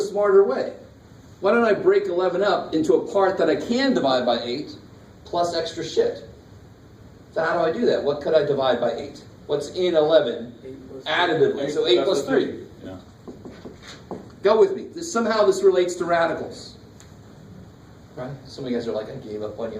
smarter way? Why don't I break 11 up into a part that I can divide by 8 plus extra shit? So how do I do that? What could I divide by 8? What's in 11 additively? So 8 plus 3. Yeah. Go with me. Somehow this relates to radicals. Right? Some of you guys are like, I gave up on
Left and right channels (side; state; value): both; identical; correlation 1.00